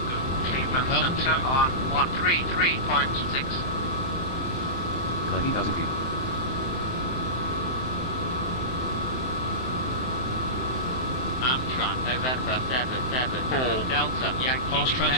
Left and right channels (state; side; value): late; right; 23 ms